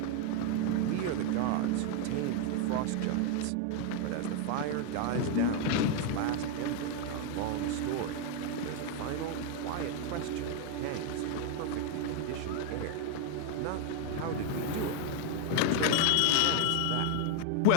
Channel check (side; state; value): both; different; correlation 0.01